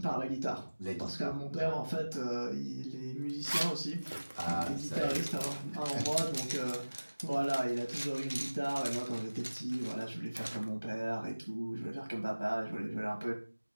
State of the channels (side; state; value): both; inverted; correlation -1.00